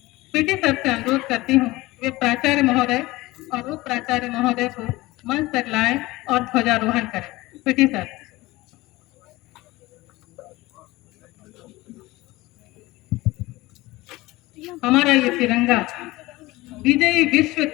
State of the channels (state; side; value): quieter; right; 19.8 dB